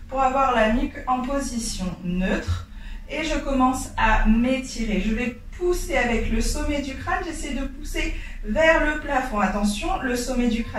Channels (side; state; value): both; identical; correlation 1.00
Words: pour avoir la nuque en position neutre. Et je commence à m'étirer. Je vais pousser avec le sommet du crâne. J'essaie de pousser vers le plafond. Attention, le sommet du